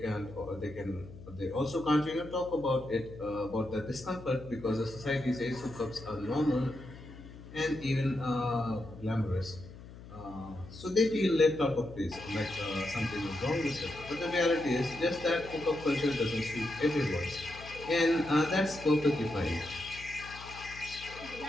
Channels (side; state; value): left; noise; hum, 16 dB below the sound